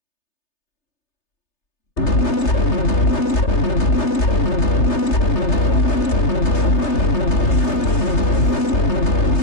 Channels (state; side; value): late; right; 3.3 ms